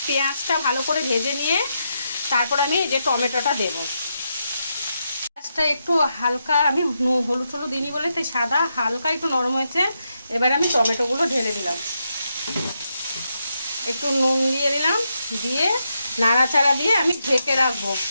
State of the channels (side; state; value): both; inverted; correlation -0.83